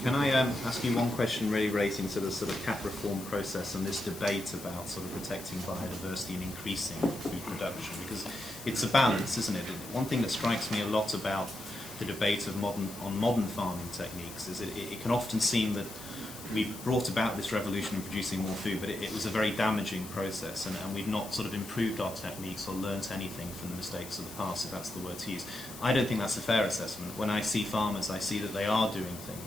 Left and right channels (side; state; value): left; noise; hiss, 14 dB below the sound